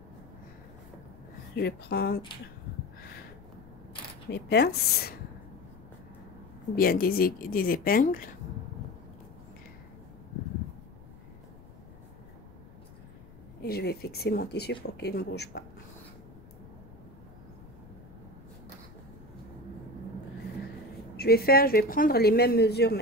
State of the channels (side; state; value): left; noise; rumble, 20 dB below the sound